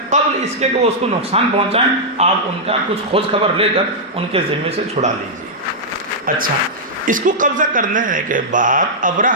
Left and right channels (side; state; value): both; normal; correlation -0.08